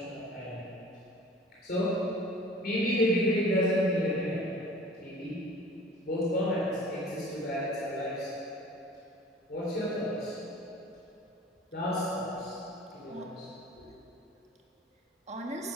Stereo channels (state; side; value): normal; both; correlation 0.46